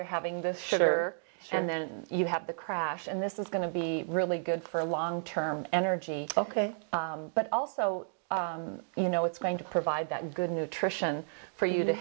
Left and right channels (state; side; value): silent; left; digital silence